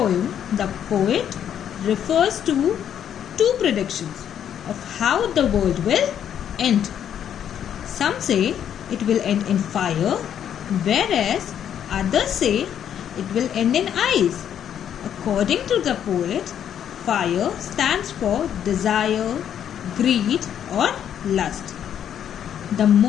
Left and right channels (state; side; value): quieter; right; 9.4 dB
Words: the poet refers to two predictions of how the world will end. Some say it will end in fire, whereas others say it will end in ice. According to the poet, fire stands for desire, greed, or lust. The